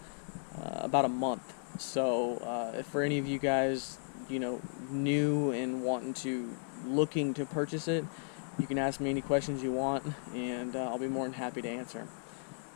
a month, so if for any of you guys new and looking to purchase it, you can ask me any questions you want, and I'll be more than happy to answer them.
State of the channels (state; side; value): silent; right; digital silence